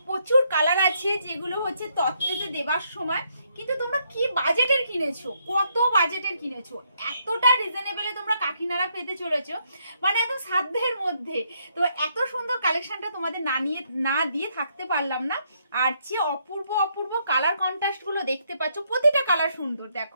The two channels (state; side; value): inverted; both; correlation -0.74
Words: প্রচুর কালার আছে যেগুলো হচ্ছে তত্ত্বেতে দেবার সময়, কিন্তু তোমরা কি বাজেটের কিনেছো, কত বাজেটের কিনেছো, এতটা রিজনেবলে তোমরা কাকিনাড়া পেতে চলেছো, মানে একদম সাধ্যের মধ্যে। তো এত সুন্দর কালেকশনটা তোমাদের না দিয়ে থাকতে পারলাম না। আর যে অপূর্ব অপূর্ব কালার কন্ট্রাস্ট গুলো দেখতে পাচ্ছ, প্রতিটা কালার সুন্দর।